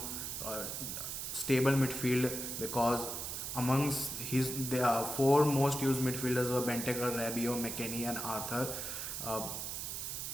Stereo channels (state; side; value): noise; right; hiss, 4 dB below the sound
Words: stable midfield, because amongst the 4 most used midfielders were Benteke, Rabiot, McKennie, and Arthur, uh,